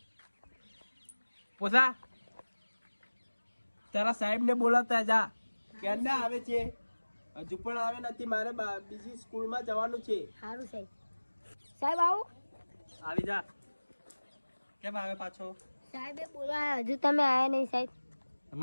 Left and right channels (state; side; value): inverted; both; correlation -1.00